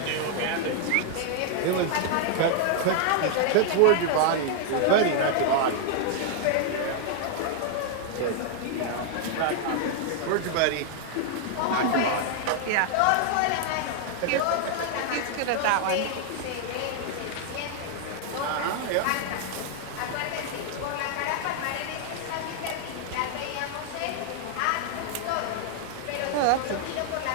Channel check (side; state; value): both; different; correlation -0.01